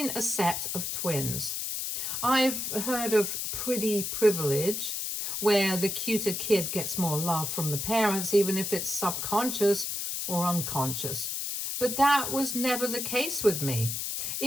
a set of twins. I've heard of pretty privilege, where the cuter kid gets more love from the parents, even if it's subconscious or unconscious. But that was never the case with me.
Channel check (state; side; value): noise; left; hiss, 3 dB below the sound